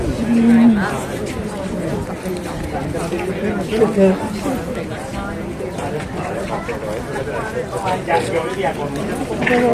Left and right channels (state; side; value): identical; both; correlation 1.00